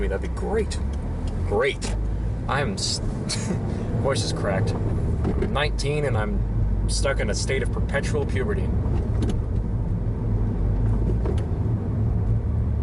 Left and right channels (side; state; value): both; identical; correlation 1.00